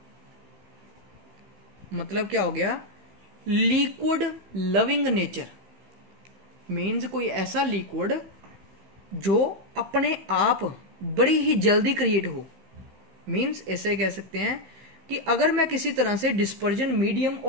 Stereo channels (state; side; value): late; left; 15 ms